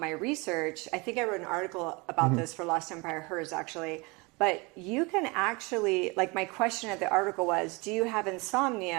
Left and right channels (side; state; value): left; quieter; 27.1 dB